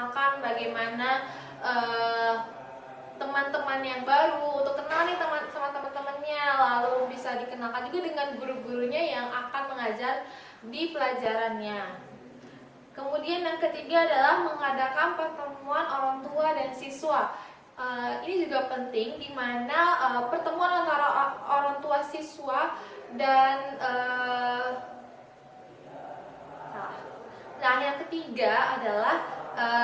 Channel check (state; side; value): identical; both; correlation 1.00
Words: bagaimana teman-teman yang baru, untuk kenal nih sama teman-temannya, lalu bisa dikenalkan juga dengan guru-gurunya yang akan mengajar di pelajarannya. Kemudian yang ketiga adalah mengadakan pertemuan orang tua dan siswa. Ini juga penting, di mana pertemuan antara orang tua siswa dan nah, yang ketiga adalah